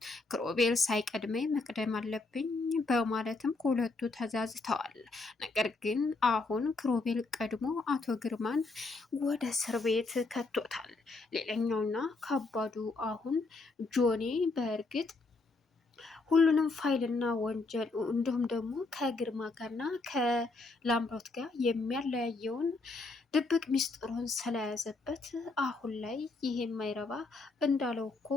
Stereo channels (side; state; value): right; quieter; 3.5 dB